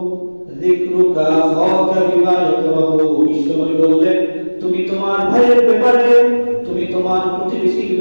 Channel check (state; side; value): inverted; both; correlation -1.00